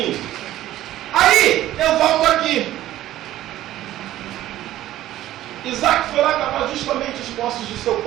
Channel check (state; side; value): quieter; left; 14.0 dB